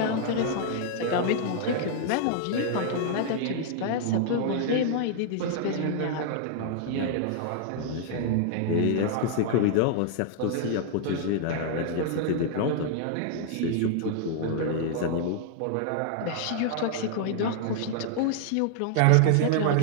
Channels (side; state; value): both; different; correlation -0.01